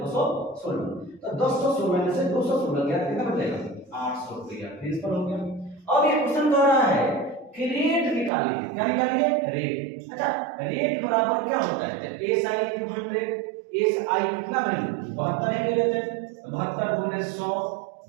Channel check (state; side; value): drops out; left; at 8.3 s